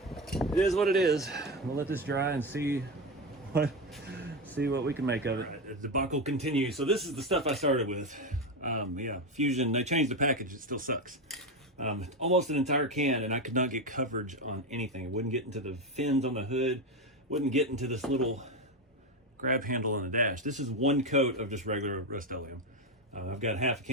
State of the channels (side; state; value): both; normal; correlation 0.14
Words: it is what it is. We'll let this dry and see what we can make of it. The debacle continues. So this is the stuff I started with. Yeah, Fusion, they changed the package, it still sucks. Almost an entire can, and I could not get coverage on anything. It wouldn't get into the fins on the hood, wouldn't get into this little grab handle on the dash. This is one coat of just regular Rust-Oleum. I've got half a